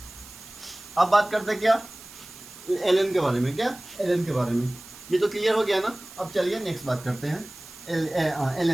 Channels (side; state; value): right; noise; hiss, 18 dB below the sound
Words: अब बात करते हैं क्या, एलएन के बारे में, क्या एलएन के बारे में, ये तो क्लियर हो गया ना। अब चलिए नेक्स्ट बात करते हैं